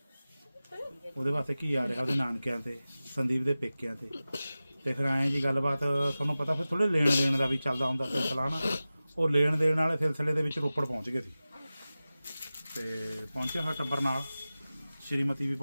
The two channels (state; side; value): inverted; both; correlation -0.96